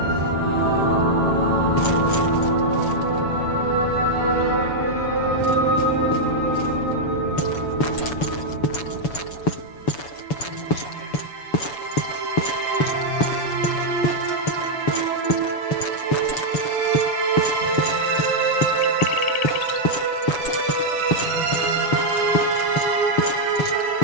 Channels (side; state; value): right; late; 7.0 ms